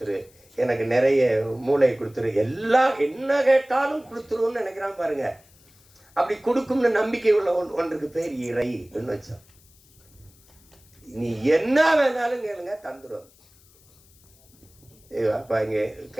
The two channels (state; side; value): noise; left; hiss, 29 dB below the sound